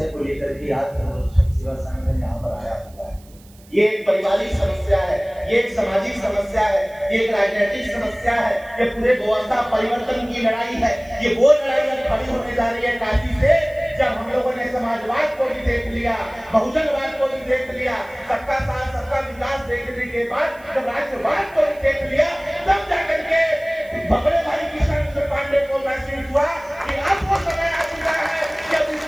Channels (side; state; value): right; noise; hiss, 27 dB below the sound